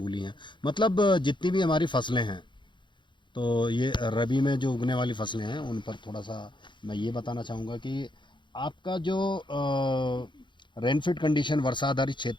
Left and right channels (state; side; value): late; right; 0.23 ms